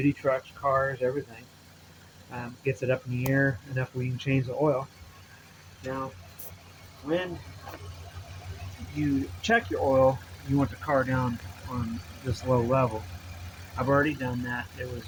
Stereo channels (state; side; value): identical; both; correlation 1.00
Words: trucks, cars, everything. Gets it up in the air enough where you can change the oil. Now, when you check your oil, you want the car down on this low level. I've already done that. It was